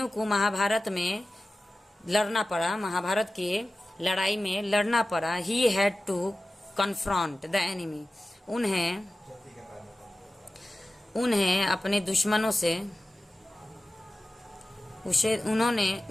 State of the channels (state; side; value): normal; both; correlation 0.95